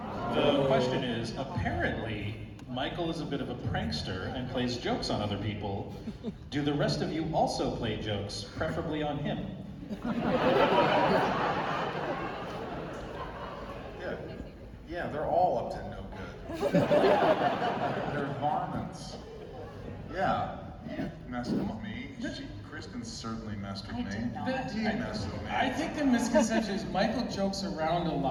The question is, apparently, Michael is a bit of a prankster and plays jokes on other people. Do the rest of you also play jokes, preferably on him? Yeah, they're all up to no good. They're varmints. Yeah, you messed with me. Kristin certainly messed with me. He messed with me. I think the misconception is Michael jokes around a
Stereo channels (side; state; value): both; identical; correlation 1.00